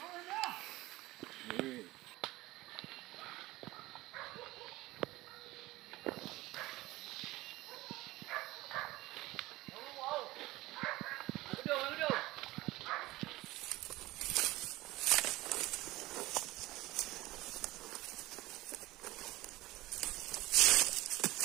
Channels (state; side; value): quieter; left; 18.7 dB